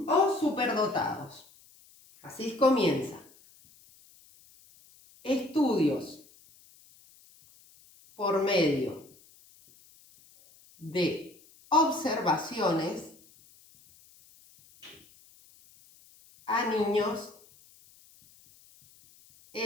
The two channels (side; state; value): left; noise; hiss, 27 dB below the sound